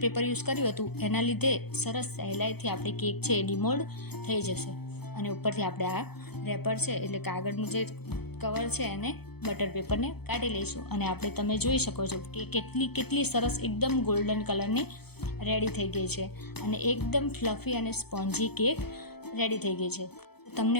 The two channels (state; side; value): late; right; 0.97 ms